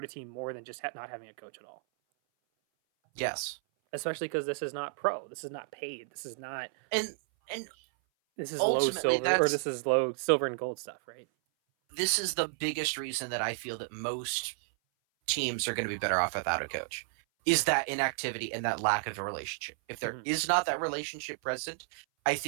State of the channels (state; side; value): silent; left; 56 dB below the other